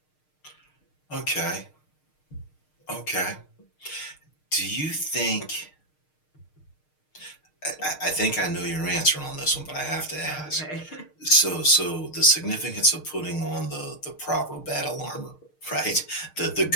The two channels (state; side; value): late; right; 6.5 ms